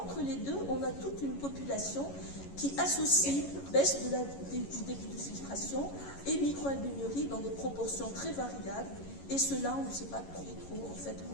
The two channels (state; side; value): late; right; 11 ms